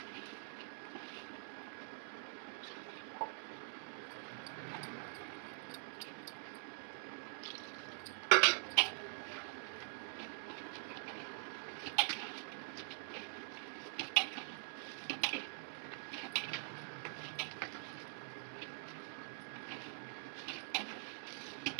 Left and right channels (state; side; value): silent; left; digital silence